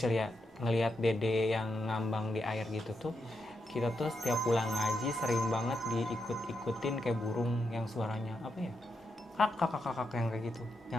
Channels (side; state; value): both; normal; correlation 0.84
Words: ya, ngelihat dede yang ngambang di air gitu tuh, kita tuh setiap pulang ngaji sering banget diikut-ikutin kayak burung yang suaranya apa ya, kakak yang kayak gitu,